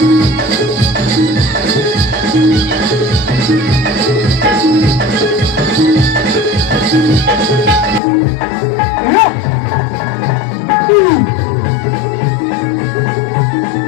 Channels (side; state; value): right; drops out; at 8.0 s